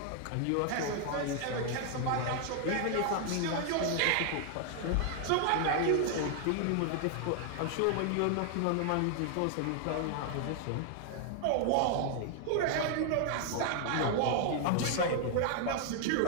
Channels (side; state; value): both; different; correlation 0.00